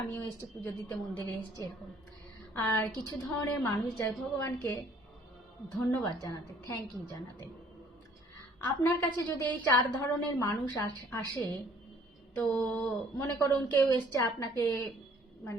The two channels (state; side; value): normal; both; correlation 0.58